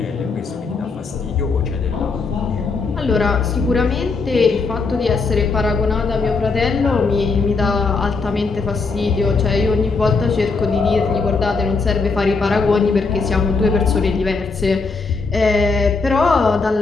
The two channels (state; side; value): quieter; right; 4.3 dB